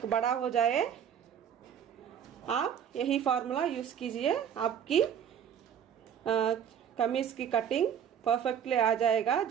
बड़ा हो जाए, आप यही फार्मूला यूज़ कीजिए। आपकी कमीज़ की कटिंग परफेक्टली आ जाएगा।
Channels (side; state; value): left; quieter; 8.5 dB